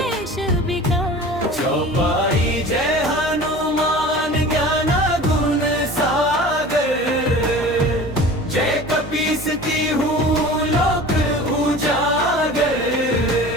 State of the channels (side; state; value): both; normal; correlation 0.39